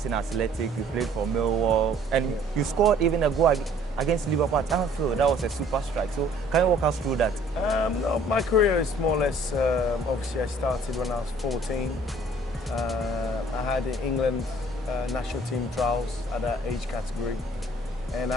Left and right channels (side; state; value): both; normal; correlation 0.57